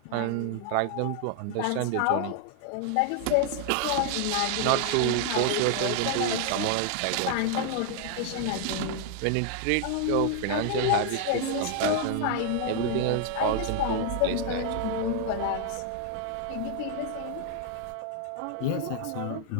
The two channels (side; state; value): both; different; correlation 0.00